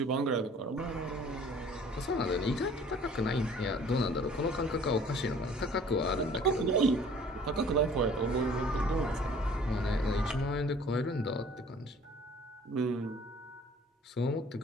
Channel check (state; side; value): normal; both; correlation 0.52